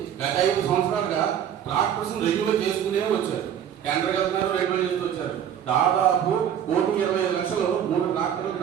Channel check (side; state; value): left; quieter; 9.4 dB